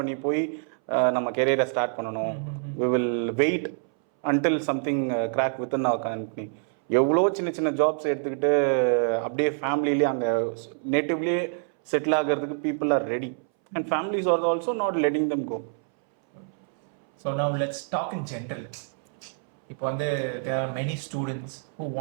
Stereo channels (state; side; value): silent; left; 61 dB below the other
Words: பண்ணி போய் நம்ம கெரியரை ஸ்டார்ட் பண்ணணும்? We will wait until something crack within our company. எவ்வளோ சின்ன சின்ன ஜாப்ஸ் எடுத்துக்கிட்டு அப்படியே ஃபேமிலியிலே அங்கே நேட்டிவ்லேயே செட்டில் ஆகிறதுக்கு people are ready. And families are also not letting them go. So now let's talk in general. இப்போ வந்து there are many students who